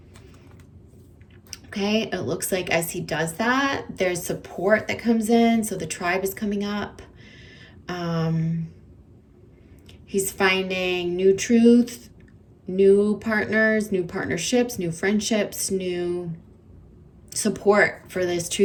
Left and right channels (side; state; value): both; identical; correlation 1.00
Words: Okay, it looks like as he does that, there's support that comes in. So the tribe is coming up. He's finding new truth, new partners, new partnerships, new friendships, new support for this